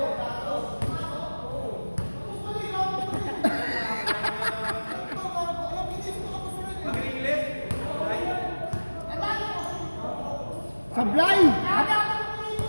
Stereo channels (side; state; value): both; inverted; correlation -1.00